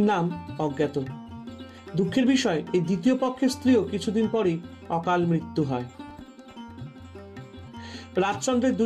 নাম অজ্ঞাত। দুঃখের বিষয়, এই দ্বিতীয় পক্ষের স্ত্রীও কিছুদিন পরই অকাল মৃত্যু হয়। রাজচন্দ্রের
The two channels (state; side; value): identical; both; correlation 1.00